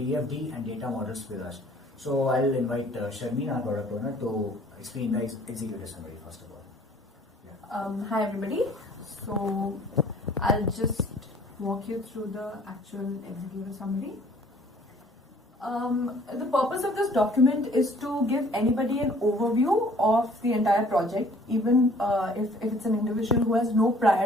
and data models with us. So I'll invite Sharmin, our product owner, to explain the executive summary first of all. Yeah. Hi everybody, so I'll just walk you through the actual executive summary. The purpose of this document is to give anybody an overview of the entire project, even if it's an individual who has no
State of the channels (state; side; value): normal; both; correlation 0.55